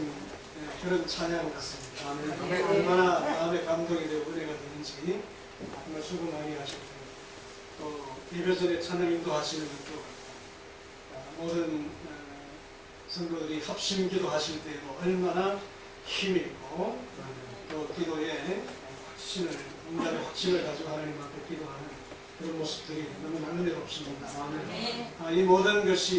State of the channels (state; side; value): identical; both; correlation 1.00